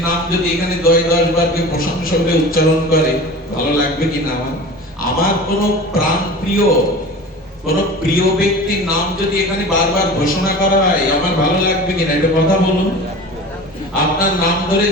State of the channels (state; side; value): normal; both; correlation 0.36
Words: নাম যদি এখানে 10 বার কেউ প্রশংসা করে উচ্চারণ করে, ভালো লাগবে কিনা? আমার কোন প্রাণ প্রিয় কোন প্রিয় ব্যক্তির নাম যদি এখানে বারবার ঘোষণা করা হয়, আমার ভালো লাগবে কিনা? একটা কথা বলুন। আপনার নাম ধরে